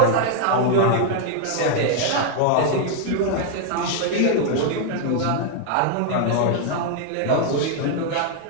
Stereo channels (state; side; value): different; both; correlation 0.00